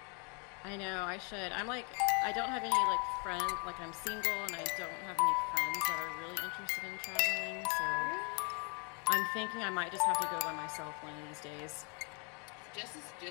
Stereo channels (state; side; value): quieter; right; 35.6 dB